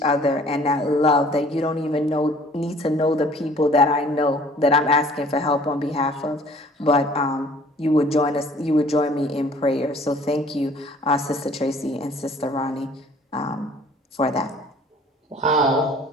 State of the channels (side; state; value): both; normal; correlation 0.53